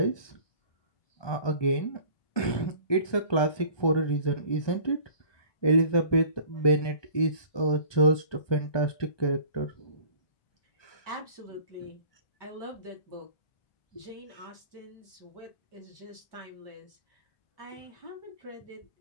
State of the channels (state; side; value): late; right; 1.2 ms